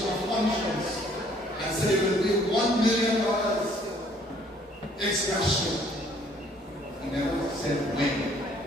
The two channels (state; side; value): normal; both; correlation 0.61